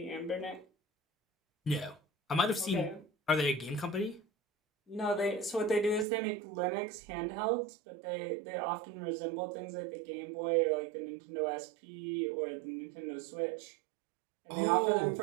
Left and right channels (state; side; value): drops out; left; at 6.1 s